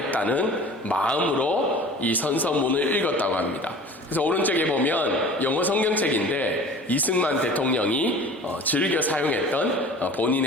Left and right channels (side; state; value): both; normal; correlation 0.42